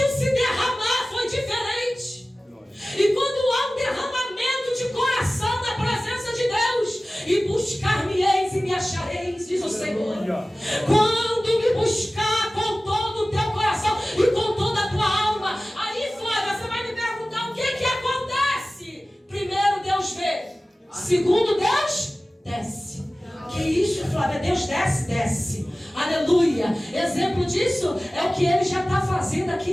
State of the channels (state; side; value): normal; both; correlation 0.97